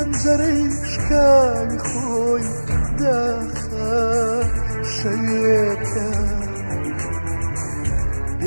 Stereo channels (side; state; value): both; inverted; correlation -1.00